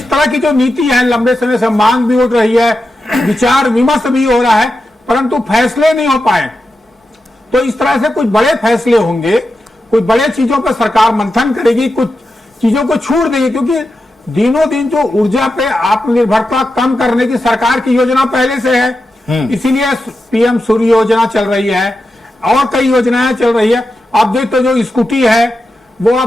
तरह की जो नीति है, लंबे समय से मांग भी उठ रही है, विचार विमर्श भी हो रहा है, परंतु फैसले नहीं हो पाए। तो इस तरह से कुछ बड़े फैसले होंगे, कुछ बड़े चीजों पर सरकार मंथन करेगी, कुछ चीजों को छूट देगी, क्योंकि दिनों दिन जो ऊर्जा पे आत्मनिर्भरता कम करने की सरकार की योजना पहले से है, इसीलिए पीएम सूर्य योजना चल रही है और कई योजनाएं चल रही है। आप देखते जो स्कूटी है वो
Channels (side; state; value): both; normal; correlation 0.90